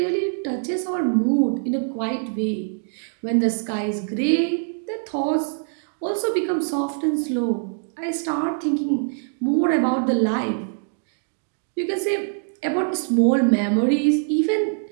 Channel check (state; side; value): silent; left; digital silence